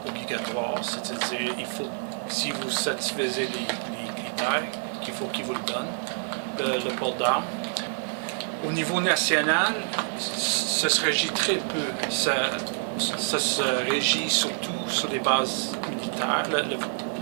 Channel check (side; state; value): left; silent; digital silence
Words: obligatoire, c'est-à-dire si vous satisfaisez les critères, qu'il faut qu'ils vous le donnent, le port d'armes. Au niveau national, ça se régit très peu. Ça se régit surtout sur les bases militaires.